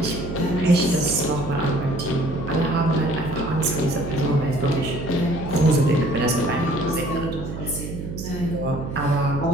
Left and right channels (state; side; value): noise; right; hum, 7 dB below the sound